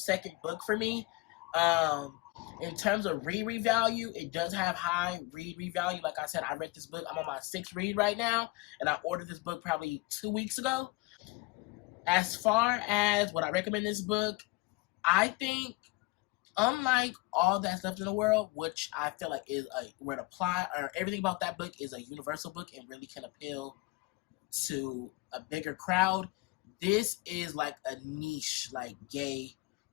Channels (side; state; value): right; quieter; 23.6 dB